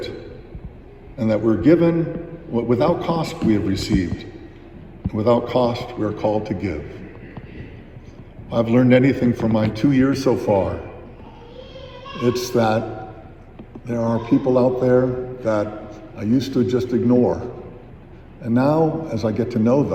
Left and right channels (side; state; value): both; identical; correlation 1.00